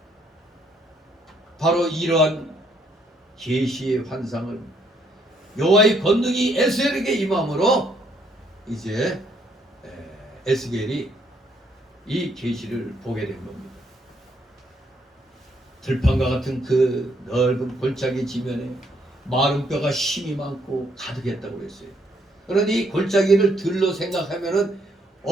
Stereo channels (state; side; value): normal; both; correlation 0.70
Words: 바로 이러한 계시의 환상을 여호와의 권능이 에스겔에게 임함으로 이제 에스겔이 이 계시를 보게 된 겁니다. 들판과 같은 그 넓은 골짜기 지면에 마른 뼈가 힘이 많고 가득했다고 그랬어요. 그런데 이 골짜기를 들로 생각하면은